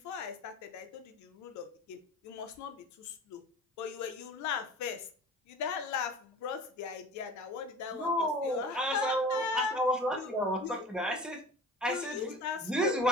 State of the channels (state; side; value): normal; both; correlation 0.39